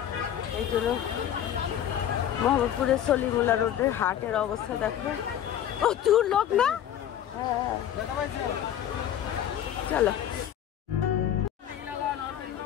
এই জন্য মোহাম্মদপুরের সলিমুল্লাহ রোডের হাটের অবস্থা দেখো, প্রচুর লোক না। চলো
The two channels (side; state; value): right; quieter; 10.4 dB